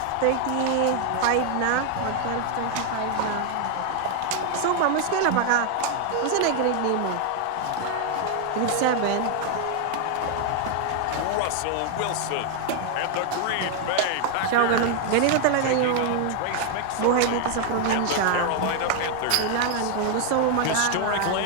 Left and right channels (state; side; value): different; both; correlation 0.00